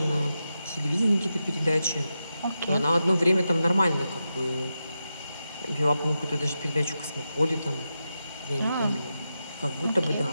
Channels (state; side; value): inverted; both; correlation -0.89